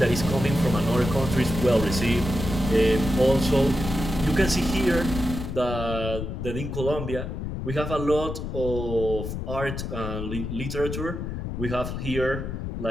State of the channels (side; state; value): left; noise; rumble, 5 dB below the sound